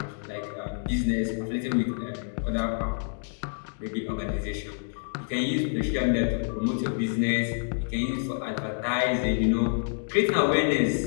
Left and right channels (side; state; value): right; silent; digital silence